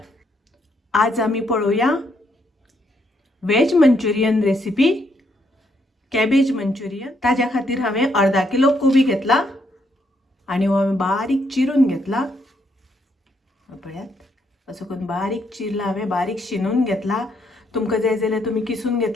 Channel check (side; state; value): both; normal; correlation 0.74